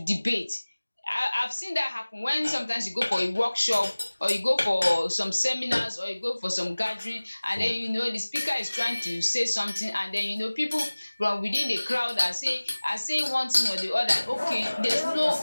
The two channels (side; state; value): both; inverted; correlation -1.00